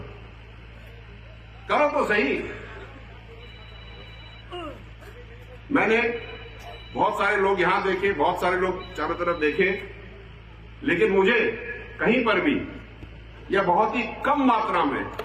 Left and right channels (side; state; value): both; identical; correlation 1.00